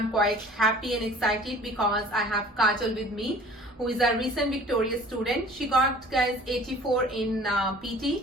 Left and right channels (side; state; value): both; normal; correlation 0.48